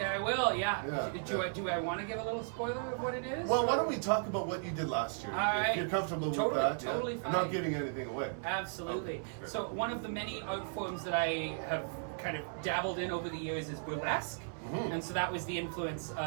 I will. Yeah. Do I want to give a little spoiler of what it is? Well, why don't we talk about what you did last year? All right. If you're comfortable with that. Totally fine. I'm not giving anything away. Absolutely. Okay. So one of the many art forms that I have kind of dabbled in over the years is burlesque. Mm-hmm. And so that was the influence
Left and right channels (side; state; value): left; silent; 54 dB below the other